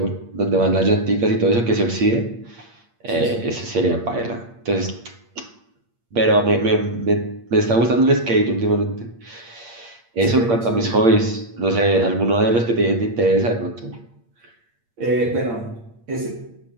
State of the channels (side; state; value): left; late; 8.6 ms